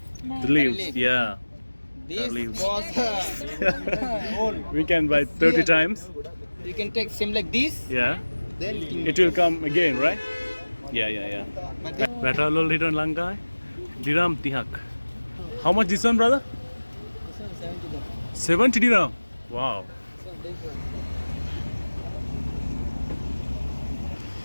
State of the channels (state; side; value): inverted; both; correlation -1.00